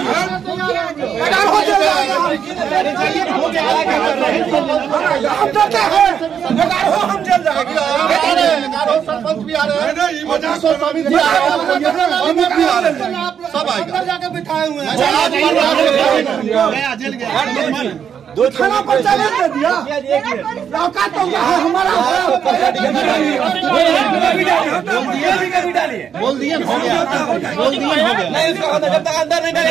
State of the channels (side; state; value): left; quieter; 8.0 dB